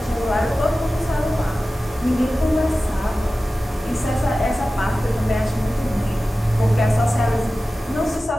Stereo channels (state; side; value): normal; both; correlation 0.95